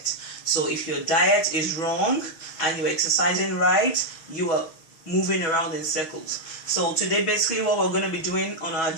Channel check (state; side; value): late; right; 6.2 ms